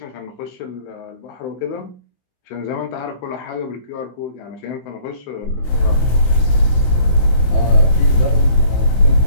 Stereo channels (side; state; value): right; late; 16 ms